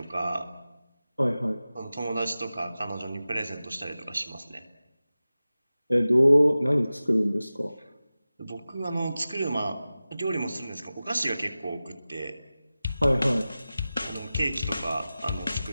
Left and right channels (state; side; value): inverted; both; correlation -0.96